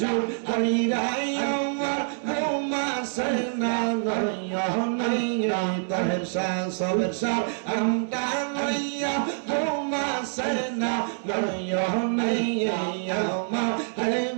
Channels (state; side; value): silent; left; digital silence